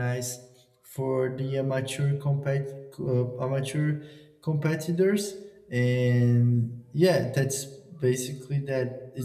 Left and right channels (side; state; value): both; identical; correlation 1.00